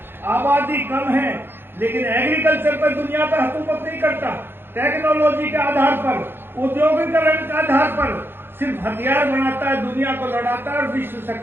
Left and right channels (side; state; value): left; late; 0.10 ms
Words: आबादी कम है, लेकिन एग्रीकल्चर पर दुनिया पर हुकूमत नहीं करता। टेक्नोलॉजी के आधार पर, औद्योगिकरण के आधार पर सिर्फ हथियार बनाता है, दुनिया को लड़ाता है और विश्व